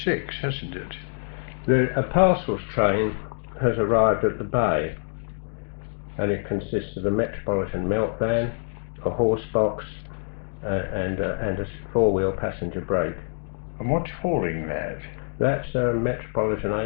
hasn't it? A parcels train has arrived at the bay, and it consists of a Metropolitan melt van, a horse box, and a four-wheel passenger brake. And what's hauling that? That's a Metropolitan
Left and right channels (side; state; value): right; silent; digital silence